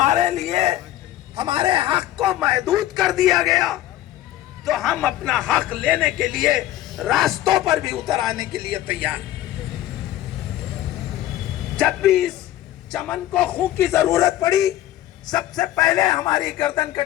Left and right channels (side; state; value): right; quieter; 13.9 dB